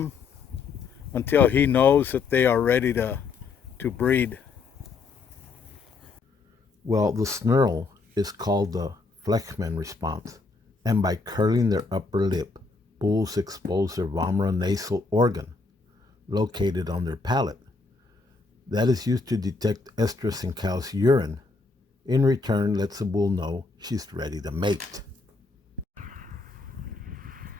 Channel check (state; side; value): quieter; right; 4.2 dB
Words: until he knows that they are ready to breed. Well, the snarl is called the Fleischmann response, and by curling their upper lip, bulls expose their vomeronasal organ, located on their palate. That is used to detect estrus in cow's urine. In return, lets the bull know she's ready to mate.